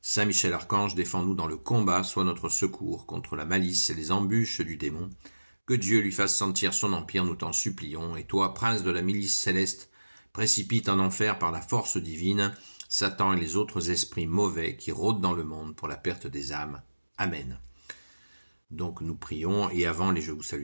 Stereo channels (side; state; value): both; inverted; correlation -1.00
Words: Saint Michel Archange, défends-nous dans le combat, sois notre secours contre la malice et les embûches du démon. Que Dieu lui fasse sentir son empire, nous t'en supplions. Et toi, prince de la milice céleste, précipite en enfer par la force divine Satan et les autres esprits mauvais qui rôdent dans le monde pour la perte des âmes. Amen. Donc nous prions, et avant les Je vous